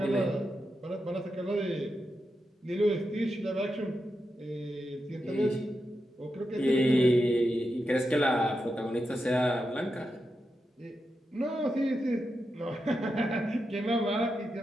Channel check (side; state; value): both; normal; correlation 0.87